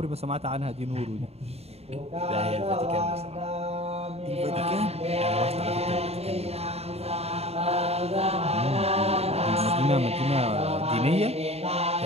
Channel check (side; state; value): left; late; 0.30 ms